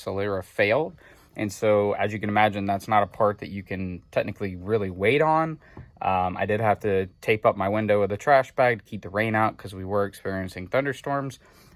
failed. And so, as you can imagine, that's not a part that you can technically really wait on. I did have to tape up my window with a trash bag to keep the rain out because we were experiencing thunderstorms.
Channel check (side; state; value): both; identical; correlation 1.00